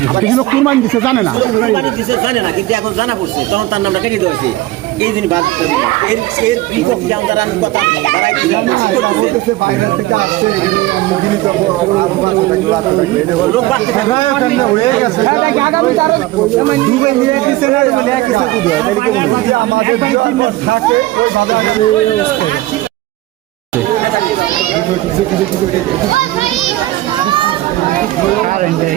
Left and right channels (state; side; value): quieter; left; 17.4 dB